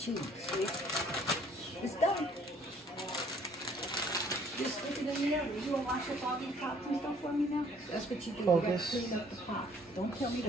See? It's done. Just stick it in the oven. You want to wash up all these pots and stuff for me now? That's what you do. Focus. You got to clean up the pot. Don't tell me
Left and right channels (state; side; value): normal; both; correlation 0.60